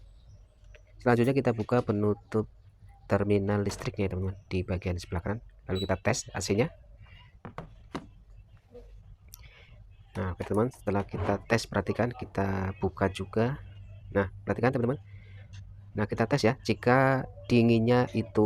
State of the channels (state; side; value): identical; both; correlation 1.00